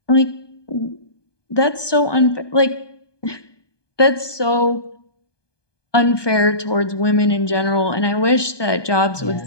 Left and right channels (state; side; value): late; right; 1.2 ms